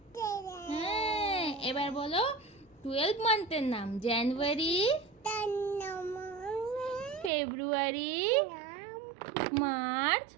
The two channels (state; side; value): drops out; left; at 7.3 s